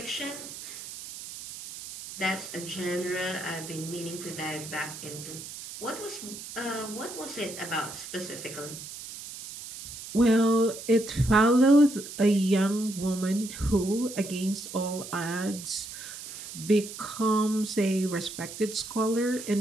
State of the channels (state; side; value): noise; right; hiss, 11 dB below the sound